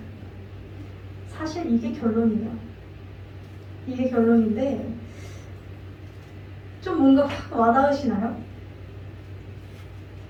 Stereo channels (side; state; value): both; identical; correlation 1.00